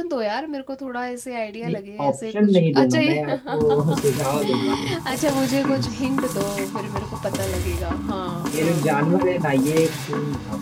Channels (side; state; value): both; identical; correlation 1.00